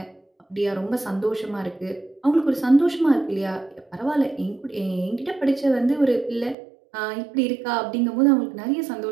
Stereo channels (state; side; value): drops out; left; at 6.6 s